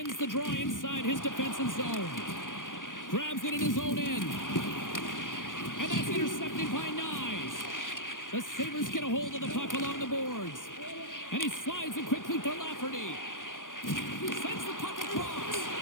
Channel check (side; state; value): right; late; 0.88 ms